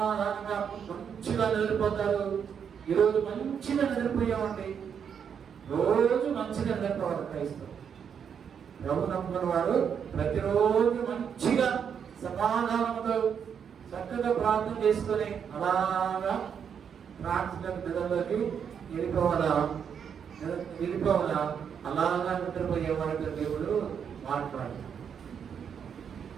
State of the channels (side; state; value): left; quieter; 7.5 dB